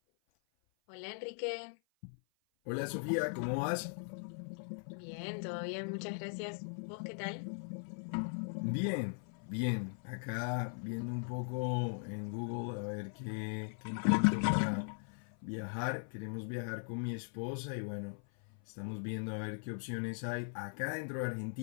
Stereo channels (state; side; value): silent; right; 51 dB below the other